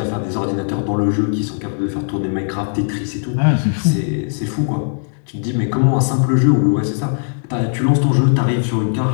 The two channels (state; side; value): silent; right; digital silence